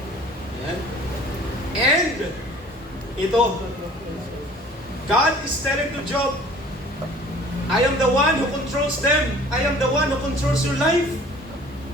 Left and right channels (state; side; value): normal; both; correlation 0.50